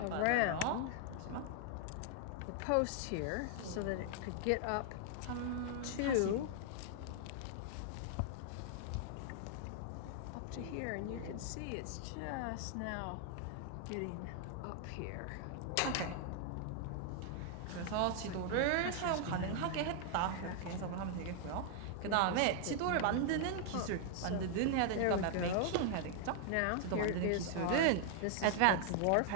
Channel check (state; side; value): different; both; correlation 0.00